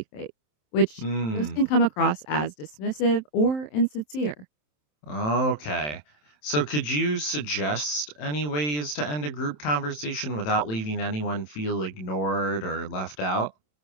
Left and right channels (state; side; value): late; right; 27 ms